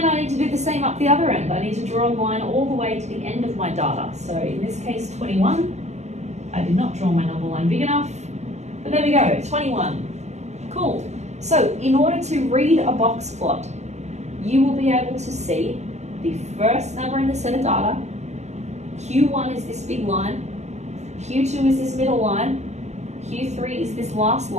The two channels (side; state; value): left; late; 0.33 ms